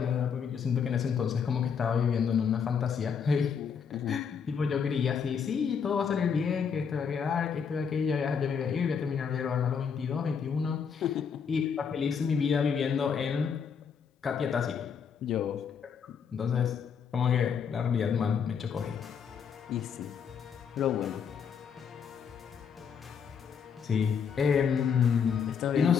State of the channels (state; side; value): quieter; right; 6.8 dB